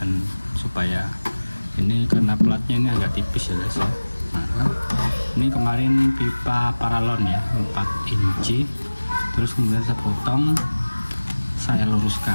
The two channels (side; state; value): both; inverted; correlation -1.00